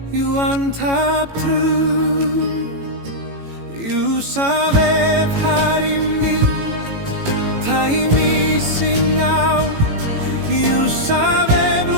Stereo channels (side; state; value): left; late; 18 ms